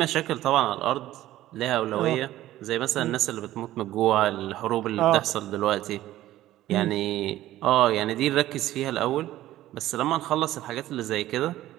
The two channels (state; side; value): quieter; left; 14.6 dB